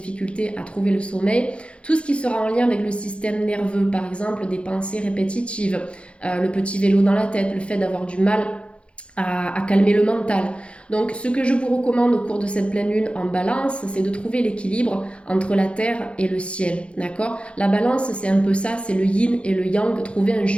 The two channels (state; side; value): late; right; 0.059 ms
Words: à trouver le sommeil. Tout ce qui sera en lien avec le système nerveux, par exemple des pensées répétitives, le petit vélo dans la tête, le fait d'avoir du mal à calmer le mental. Donc ce que je vous recommande au cours de cette pleine lune en balance, c'est de trouver l'équilibre entre la terre et le ciel, d'accord? La balance, c'est un peu ça, c'est le yin et le yang, trouver un